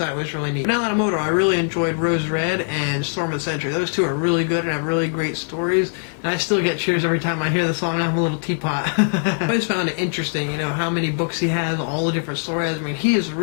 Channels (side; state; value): right; silent; digital silence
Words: it was really neat. But now that I'm older, I really enjoyed Rose Red and Storm of the Century. Those two are really good and have really great stories, and I still get cheers every time I hear the song I'm a Little Teapot. I always found it interesting, you know, how many books he has, all the different stories. I mean, he is